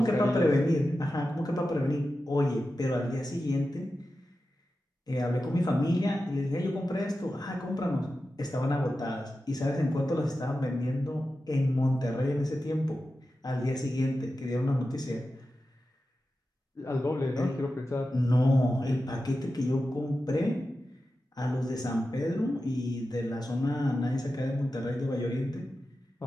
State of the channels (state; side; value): normal; both; correlation 0.92